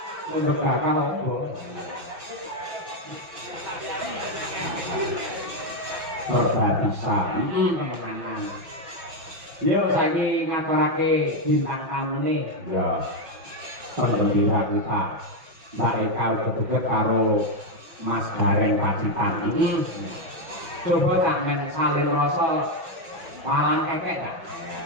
mendekatkan apa? Perbatasan. Teman-teman. Yo saiki ngaturake bintang tamune. Ya. Pendhira kita. Mereka uga karo Mas Gareng Pacitan. Coba tak men salin rasa palang kekek tak?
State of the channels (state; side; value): late; left; 6.1 ms